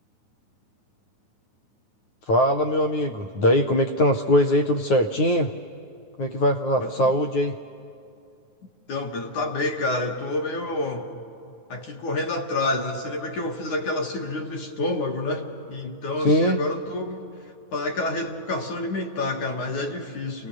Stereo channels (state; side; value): late; right; 9.4 ms